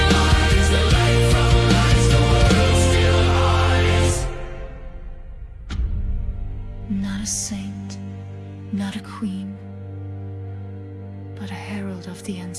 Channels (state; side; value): identical; both; correlation 1.00